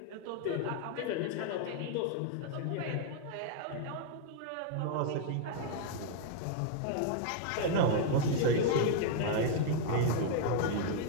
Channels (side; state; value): both; different; correlation -0.01